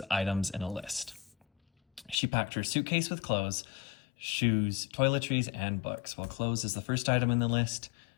items in a list. She packed her suitcase with clothes, shoes, toiletries, and books. Well, clothes is the first item in the list.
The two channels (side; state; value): right; drops out; at 2.1 s